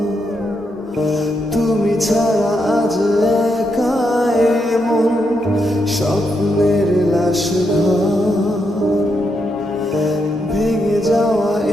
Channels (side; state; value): both; normal; correlation 0.81